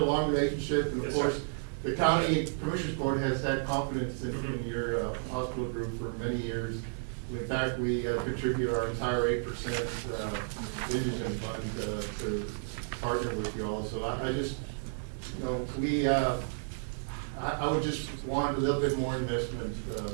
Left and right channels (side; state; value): left; silent; digital silence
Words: long relationship, and of Yes, course, sir. the county commissioners court has had confidence in your hospital group for many years. In fact, we contribute our entire 8% indigent fund to partner with you all. So I just you know, we, I would just want a little bit more investment,